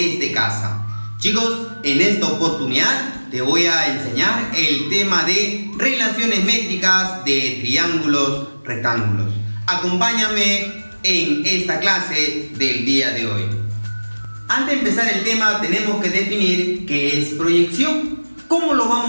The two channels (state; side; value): inverted; both; correlation -1.00